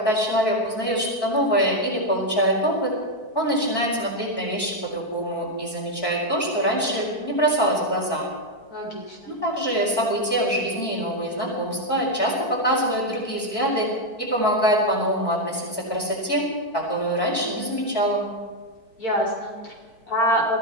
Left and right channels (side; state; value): right; late; 4.5 ms